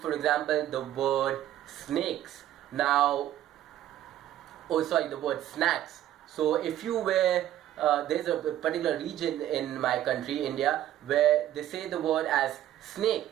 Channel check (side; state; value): left; quieter; 12.5 dB